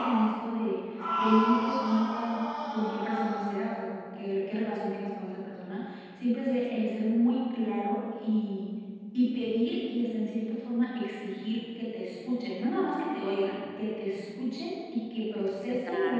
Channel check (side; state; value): both; identical; correlation 1.00